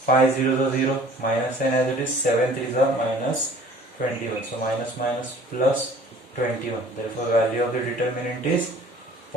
0 is 0, minus 10 as it is, 7 3 is minus 21. So minus minus plus 21. Therefore value of the determinant is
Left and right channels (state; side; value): normal; both; correlation 0.49